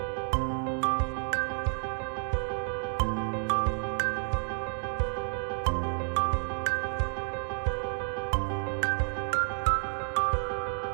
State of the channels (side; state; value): left; silent; 58 dB below the other